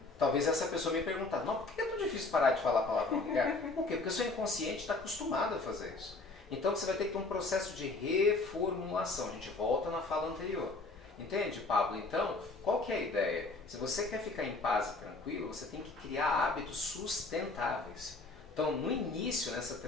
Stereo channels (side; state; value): right; quieter; 3.4 dB